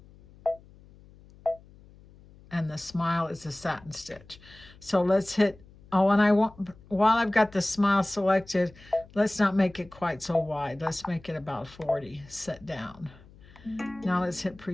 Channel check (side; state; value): left; noise; hum, 24 dB below the sound